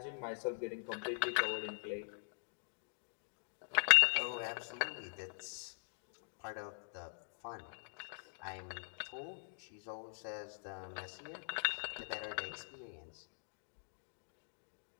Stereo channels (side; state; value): right; silent; digital silence